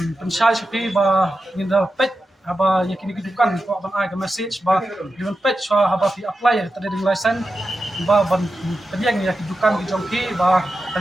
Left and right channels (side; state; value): both; normal; correlation 0.91